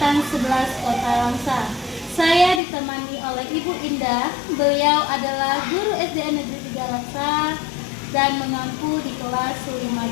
11 Kota Langsa. Saya ditemani oleh Ibu Indah. Beliau adalah guru SDN Negeri 3 Langsa dan mengampu di kelas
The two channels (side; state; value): right; drops out; at 2.6 s